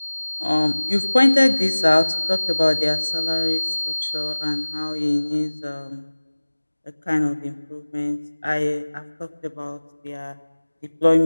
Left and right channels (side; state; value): both; inverted; correlation -1.00